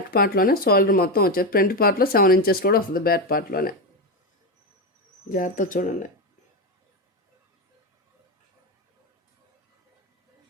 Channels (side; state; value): both; normal; correlation 0.12